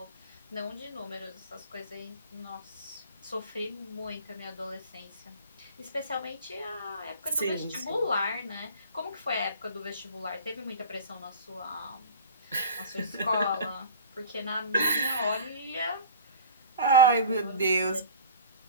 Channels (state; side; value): inverted; both; correlation -0.40